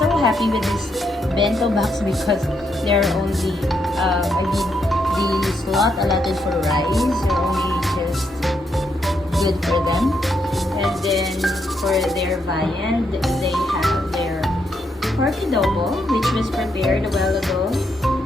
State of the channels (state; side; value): normal; both; correlation 0.78